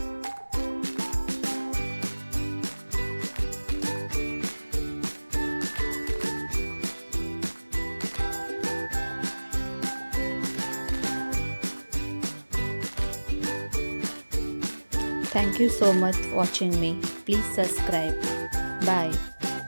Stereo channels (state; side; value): inverted; both; correlation -1.00